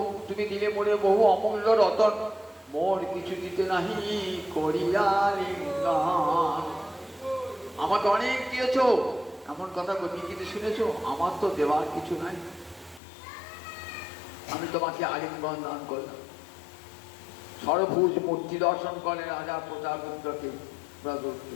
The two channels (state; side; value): drops out; right; at 13.0 s